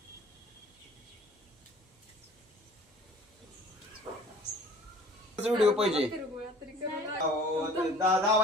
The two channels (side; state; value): both; normal; correlation 0.49